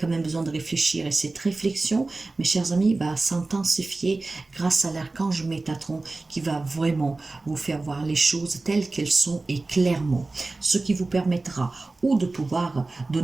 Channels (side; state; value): left; quieter; 3.3 dB